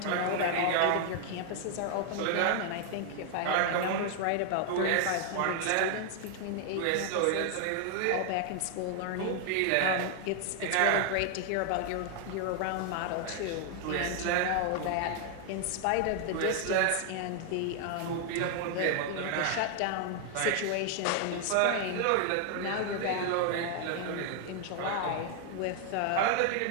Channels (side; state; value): both; different; correlation 0.00